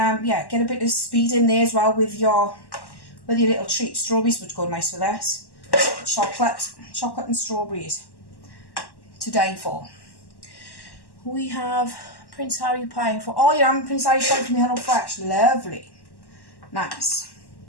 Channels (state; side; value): late; right; 1.1 ms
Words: yeah, get a bit of speed in there as well with your little treat. Strawberries would go nice with this. Chocolate and strawberries to die for. We have Prince Harry pie for, oh yeah, I'm Prince Harry pie from Hello Fresh. Lovely. Nice.